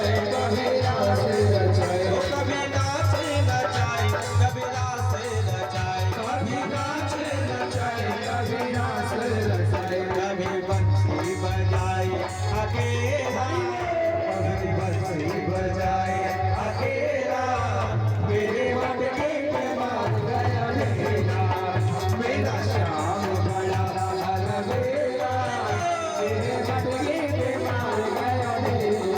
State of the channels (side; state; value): both; identical; correlation 1.00